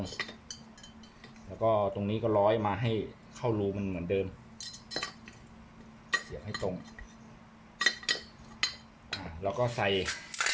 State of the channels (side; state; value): both; identical; correlation 1.00